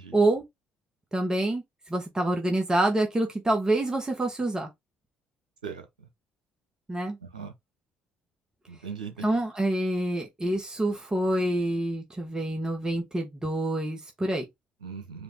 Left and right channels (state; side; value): normal; both; correlation 0.87